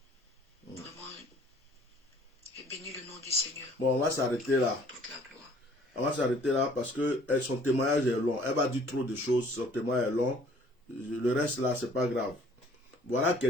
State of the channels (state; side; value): normal; both; correlation 0.56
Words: Vraiment, j'ai béni le nom du Seigneur. Bon, on va s'arrêter là. Toute la gloire. On va s'arrêter là parce que son témoignage est long. Elle va dire trop de choses, son témoignage est long. Le reste là, c'est pas grave. Voilà